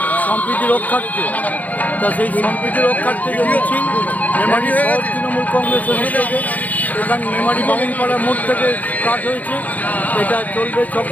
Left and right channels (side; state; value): right; late; 0.077 ms